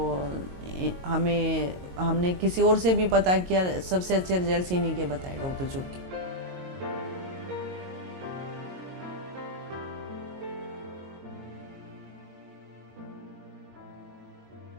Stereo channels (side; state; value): left; late; 22 ms